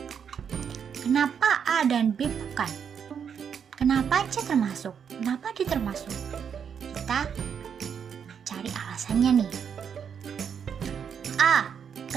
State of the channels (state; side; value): quieter; left; 7.4 dB